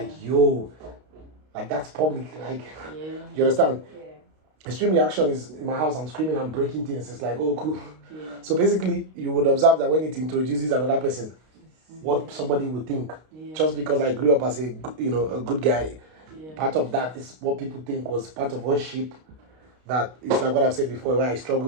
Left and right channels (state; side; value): late; left; 32 ms